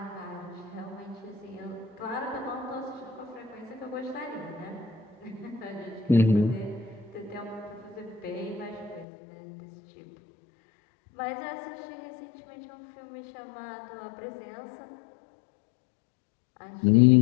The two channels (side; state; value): right; drops out; at 9.1 s